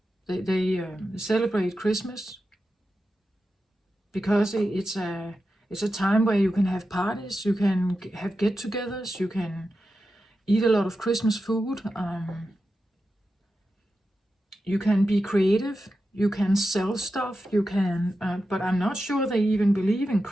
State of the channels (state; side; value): normal; both; correlation 0.90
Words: They celebrate Christmas because it's a time where you can have parties, you can have get-togethers, you can eat a lot of Christmas food, you can be creative, you can sell stuff, you can, but I'm not sure they even believe in